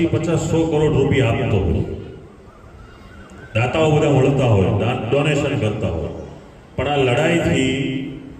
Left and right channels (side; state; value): both; identical; correlation 1.00